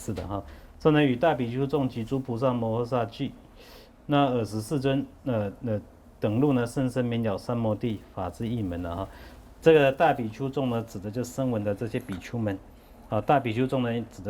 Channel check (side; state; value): both; identical; correlation 1.00